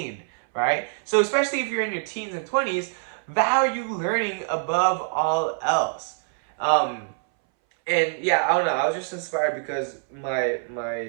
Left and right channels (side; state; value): left; silent; 61 dB below the other